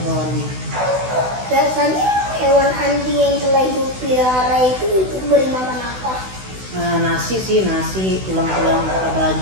hewannya. Biasanya hewan anjing yang telah Ibu pelihara itu beri makan apa? Nasi sih, nasi, tulang-tulang atau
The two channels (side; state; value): left; late; 16 ms